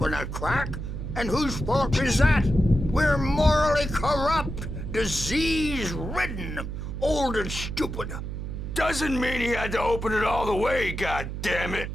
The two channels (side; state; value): right; noise; hum, 6 dB below the sound